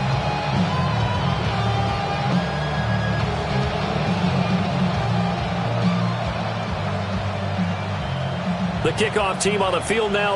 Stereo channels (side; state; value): both; identical; correlation 1.00